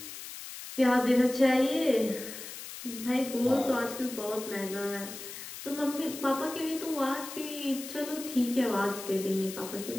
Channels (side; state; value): left; noise; hiss, 11 dB below the sound